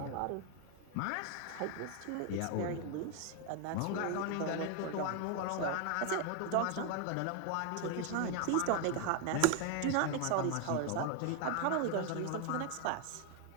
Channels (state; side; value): different; both; correlation 0.01